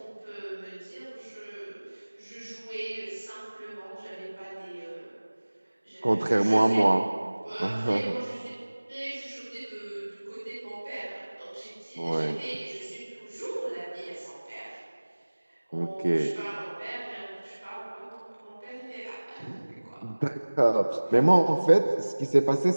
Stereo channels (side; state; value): both; inverted; correlation -1.00